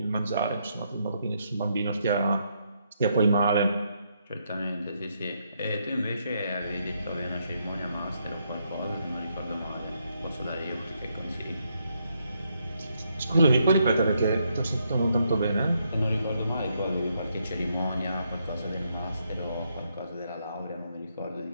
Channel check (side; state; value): both; inverted; correlation -0.76